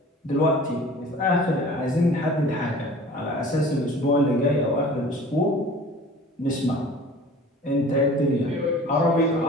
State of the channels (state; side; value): normal; both; correlation 0.44